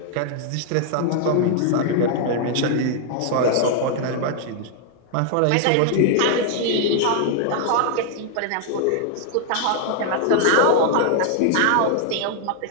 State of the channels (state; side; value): different; both; correlation 0.00